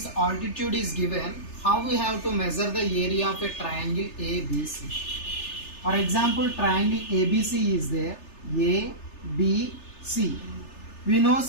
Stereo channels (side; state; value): right; late; 3.3 ms